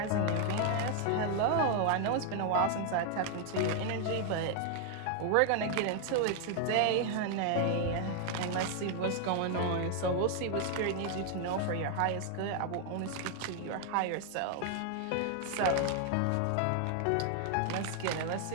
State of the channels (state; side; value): different; both; correlation 0.00